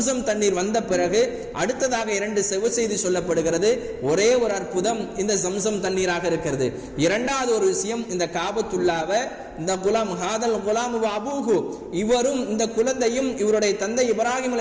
தண்ணீர் வந்த பிறகு அடுத்ததாக 2 செவ செய்தி சொல்லப்படுகிறது. ஒரே ஒரு அற்புதம் இந்த ஜம்சம் தண்ணீராக இருக்கிறது. இரண்டாவது ஒரு விஷயம், இந்த காபத்துல்லாவை இந்த குலாம் ஹாதல் குலாம் அபூஹு, இவரும் இந்த குழந்தையும் இவருடைய தந்தை இப்ராஹிம்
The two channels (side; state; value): both; identical; correlation 1.00